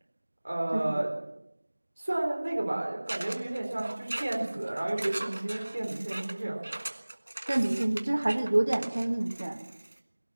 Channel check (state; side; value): inverted; both; correlation -1.00